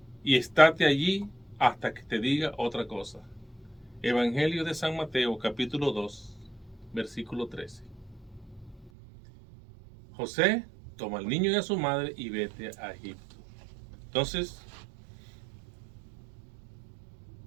y estate allí hasta que te diga otra cosa. Evangelio de San Mateo, capítulo 2, versículo 13. José, toma al niño y a su madre y vete a Egipto. Entonces,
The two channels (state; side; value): drops out; left; at 8.9 s